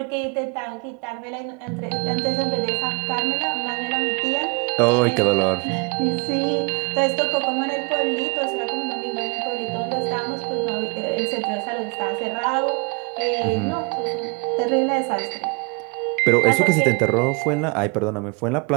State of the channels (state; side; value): quieter; left; 30.9 dB